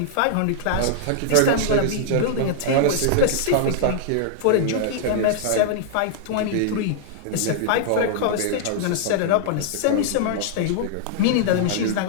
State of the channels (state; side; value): different; both; correlation -0.01